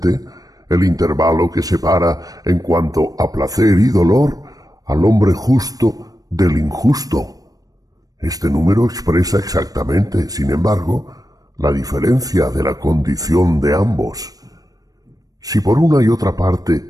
el intervalo que separa, en cuanto a placer y dolor, al hombre justo del injusto. Este número expresa exactamente, sin embargo, la diferencia de la condición de ambos. Si por una y otra parte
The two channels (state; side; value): late; left; 0.18 ms